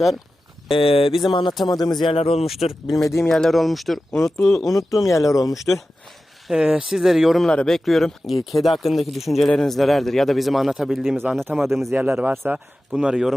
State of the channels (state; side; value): normal; both; correlation 0.94